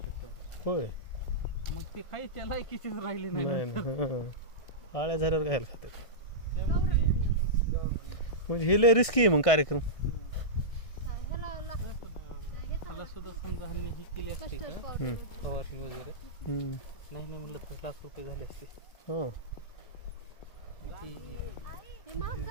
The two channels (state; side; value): late; right; 1.6 ms